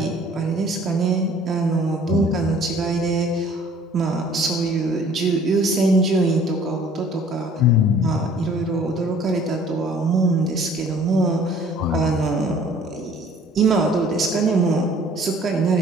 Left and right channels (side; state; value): both; normal; correlation 0.53